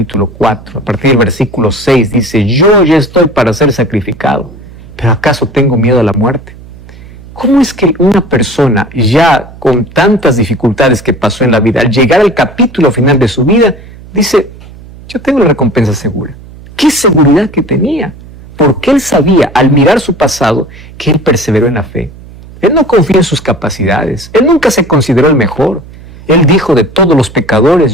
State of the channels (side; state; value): right; noise; hum, 19 dB below the sound